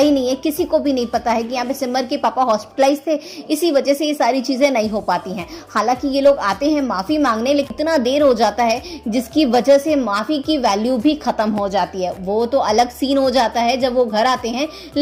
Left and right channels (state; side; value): identical; both; correlation 1.00